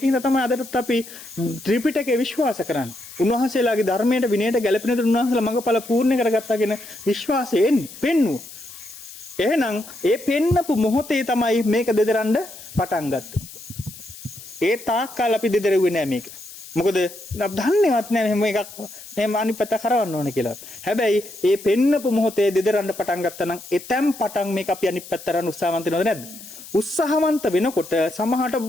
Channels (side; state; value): left; noise; hiss, 16 dB below the sound